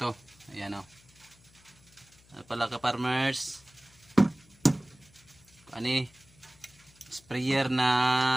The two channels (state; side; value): noise; left; hum, 28 dB below the sound